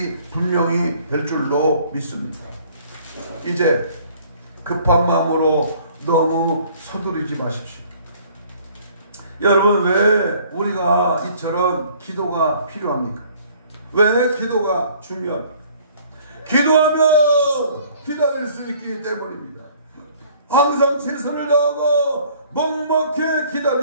분명히 될 줄로 믿습니다. 이제 급한 마음으로 너무 서두르지 마십시오. 여러분, 왜 우리가 이처럼 기도가 필요합니까? 왜 기도가 중요합니까? 기도하면 기다릴 수 있기 때문입니다. 항상 최선을 다하고 묵묵히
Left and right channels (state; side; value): inverted; both; correlation -0.56